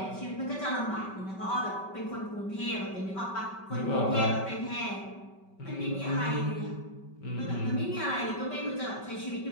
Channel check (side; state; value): right; late; 5.2 ms